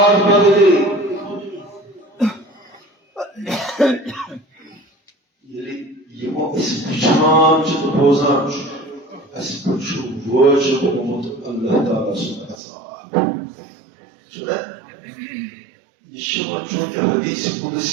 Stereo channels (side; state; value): left; drops out; at 12.6 s